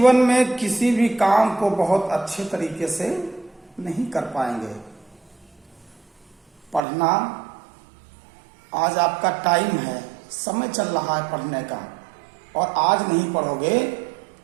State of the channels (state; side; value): drops out; left; at 6.8 s